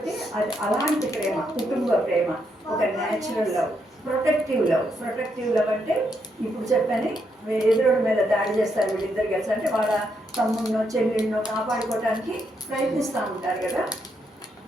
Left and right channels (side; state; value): both; normal; correlation 0.78